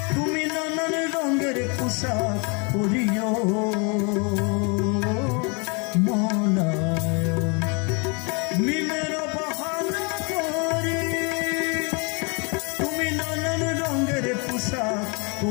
পোশাক পরিও মলায় মিমের বাহানা করি তুমি নানান রঙের পোশাক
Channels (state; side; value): quieter; right; 33.1 dB